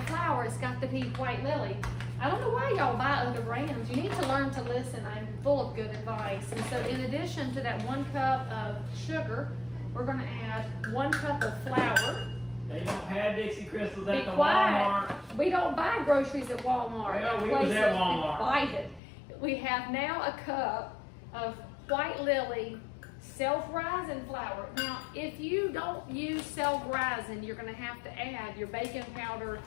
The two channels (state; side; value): drops out; right; at 19.0 s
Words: flour, it's got to be White Lilly. I don't know why y'all buy other brands. You need to learn to listen. I'm full of good advice. And so in addition to that 1 cup of sugar, we're going to add 1 cup of flour. They don't have Dixie Crystals at the Walmart. Walmart. We don't buy groceries at Walmart. Well, we was at Walmart. Buy it. We have now a cup of White Lilly self-rising flour. Now, if you don't use self-rising, you're going to have to add your baking powder